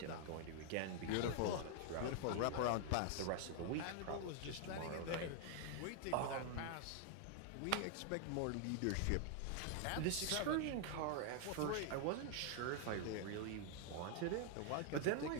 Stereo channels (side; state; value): both; different; correlation 0.00